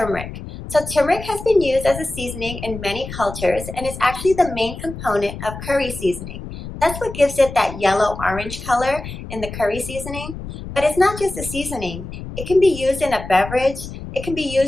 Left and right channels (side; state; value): left; noise; rumble, 10 dB below the sound